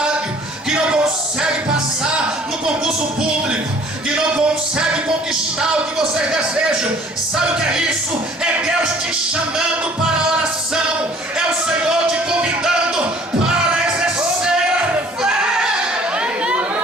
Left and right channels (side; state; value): both; normal; correlation 0.54